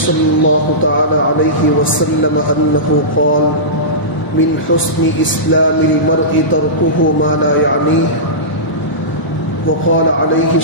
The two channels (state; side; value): late; right; 1.0 ms